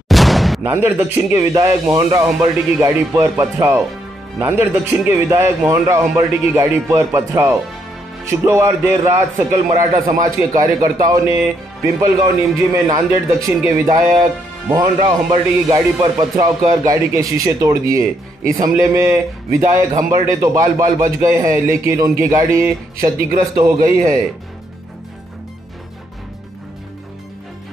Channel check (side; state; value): both; normal; correlation 0.75